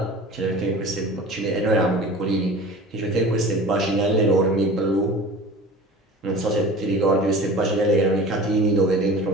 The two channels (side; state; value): both; normal; correlation 0.39